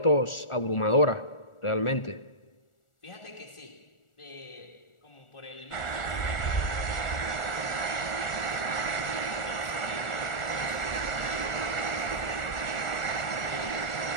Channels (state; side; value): late; right; 1.4 ms